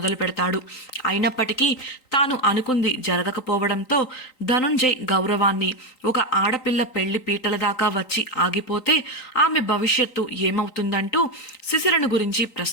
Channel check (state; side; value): late; right; 3.9 ms